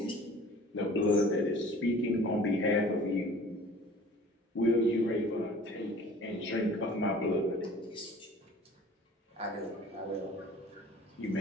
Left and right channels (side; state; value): both; normal; correlation 0.47